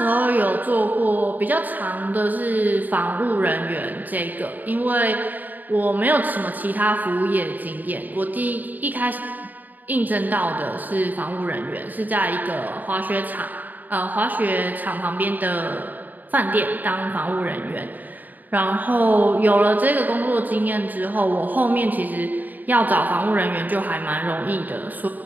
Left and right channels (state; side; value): late; left; 0.084 ms